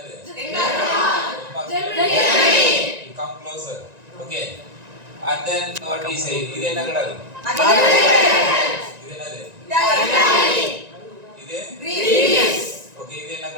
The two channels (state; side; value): late; left; 1.9 ms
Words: You come closer. Okay. And then what we say? இது என்ன கடல்? இது என்னது? இது Greece. Okay, இது என்ன